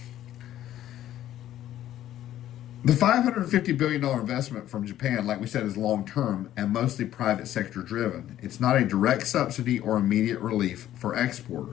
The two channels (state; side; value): quieter; right; 12.6 dB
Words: The $550 billion investment from Japan, like we said, is long-term and mostly private sector driven. It's not a direct subsidy or immediate relief for